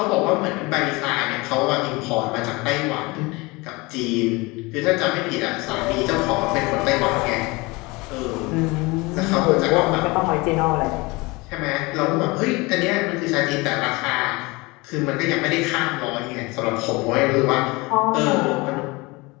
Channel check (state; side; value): quieter; right; 24.3 dB